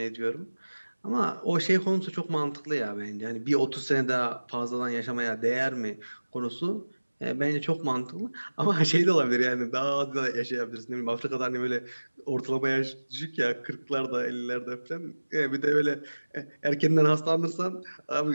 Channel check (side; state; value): both; inverted; correlation -1.00